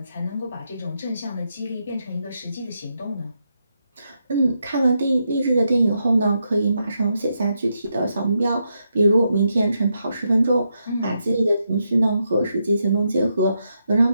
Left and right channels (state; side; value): inverted; both; correlation -0.82